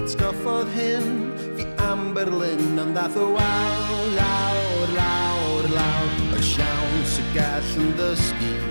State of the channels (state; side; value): inverted; both; correlation -1.00